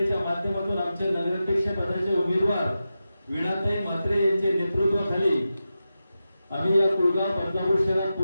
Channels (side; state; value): both; inverted; correlation -0.92